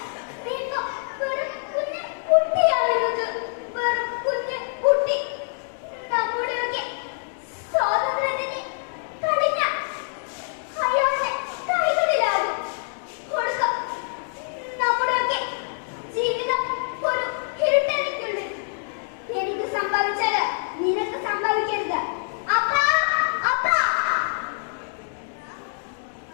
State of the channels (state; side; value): silent; right; digital silence